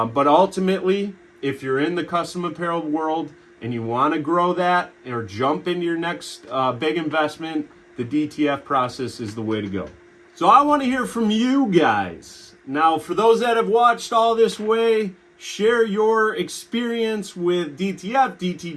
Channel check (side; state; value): both; identical; correlation 1.00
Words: ultimately, if you're in the custom apparel world and you want to grow that or jump into your next big investment, the DTF process is the way to go. So I want to hear from you guys. Now, for those that have watched all this way, share your experience with DTF,